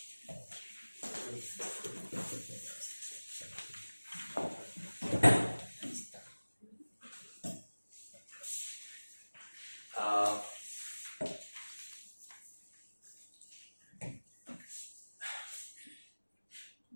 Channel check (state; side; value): inverted; both; correlation -1.00